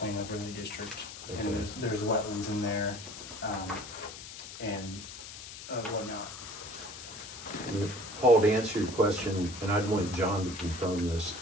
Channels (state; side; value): noise; left; hiss, 12 dB below the sound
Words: overlay district. Okay. And there's wetlands in there, and whatnot. Paul, to answer your question, and I'd want John to confirm this,